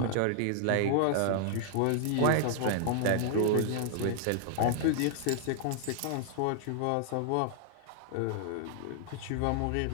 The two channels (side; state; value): both; different; correlation 0.00